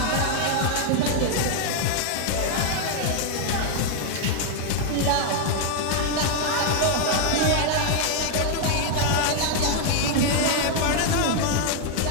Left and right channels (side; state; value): both; different; correlation 0.00